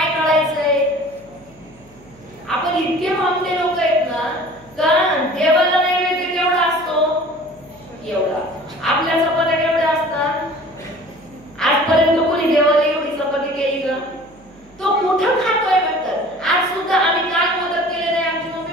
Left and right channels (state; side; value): noise; right; hum, 28 dB below the sound